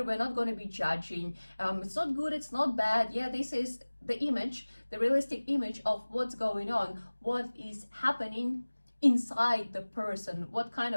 we're not going to be judging. It's not good, it's not bad. Yeah, this is the image, the realistic image of what's going on, what is happening inside the person, what kind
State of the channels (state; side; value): inverted; both; correlation -1.00